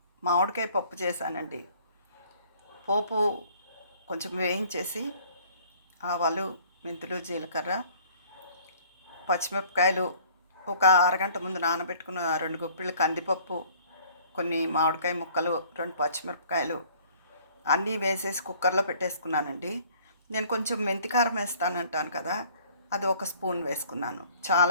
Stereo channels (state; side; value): inverted; both; correlation -0.55